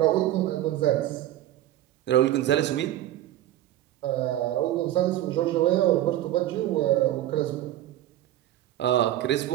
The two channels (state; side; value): quieter; left; 13.6 dB